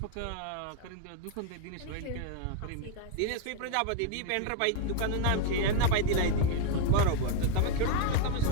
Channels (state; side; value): different; both; correlation 0.01